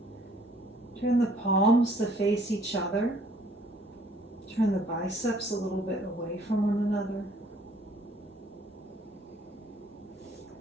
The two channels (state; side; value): normal; both; correlation 0.60